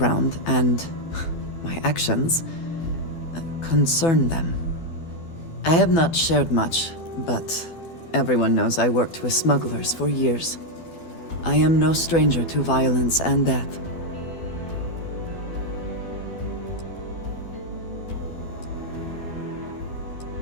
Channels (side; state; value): right; late; 12 ms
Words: and my actions concern them. I have not shared much, but everyone knows I worked with smugglers for years. I am no stranger to violence and death.